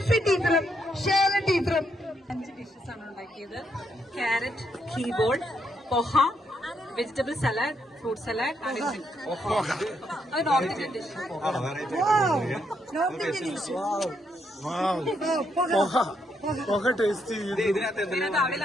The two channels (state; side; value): normal; both; correlation 0.77